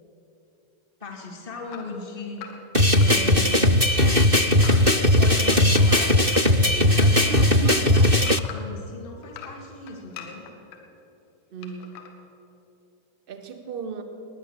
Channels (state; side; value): late; left; 2.6 ms